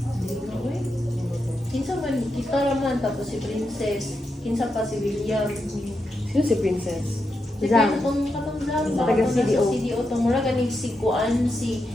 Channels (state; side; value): normal; both; correlation 0.85